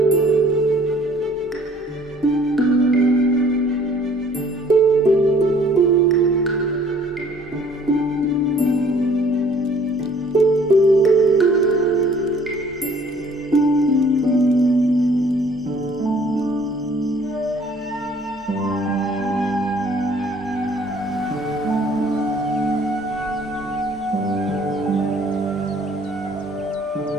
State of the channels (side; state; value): both; normal; correlation 0.56